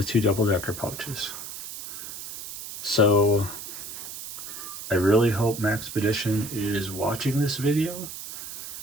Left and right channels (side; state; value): right; noise; hiss, 10 dB below the sound